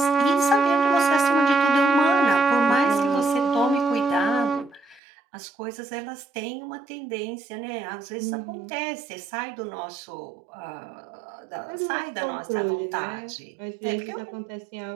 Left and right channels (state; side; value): drops out; left; at 5.0 s